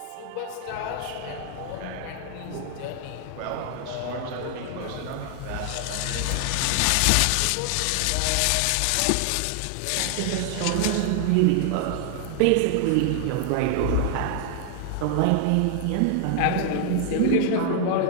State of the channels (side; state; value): both; different; correlation 0.00